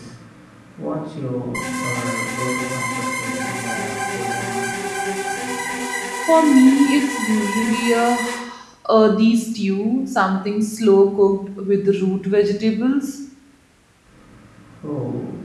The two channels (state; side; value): identical; both; correlation 1.00